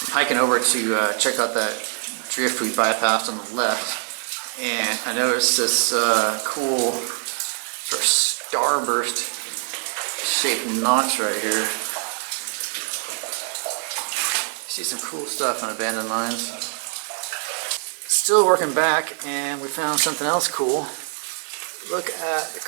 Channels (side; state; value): left; silent; 57 dB below the other